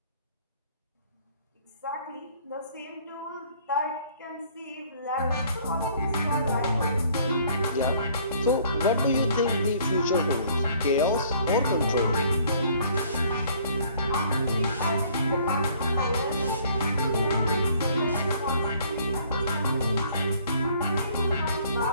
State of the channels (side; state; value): both; inverted; correlation -0.58